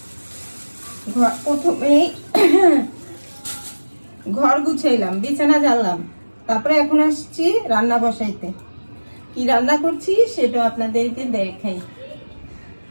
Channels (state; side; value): inverted; both; correlation -1.00